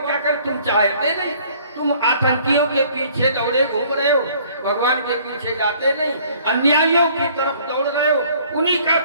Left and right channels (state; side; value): inverted; both; correlation -0.56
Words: कर, तुम चाहते नहीं, तुम आतंकियों के पीछे दौड़े घूम रहे हो, भगवान के पीछे जाते नहीं, अन्यायियों की तरफ दौड़ रहे हो, उन्हीं का